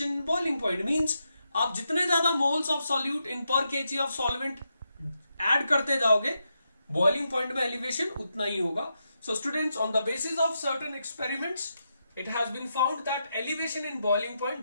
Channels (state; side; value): inverted; both; correlation -0.84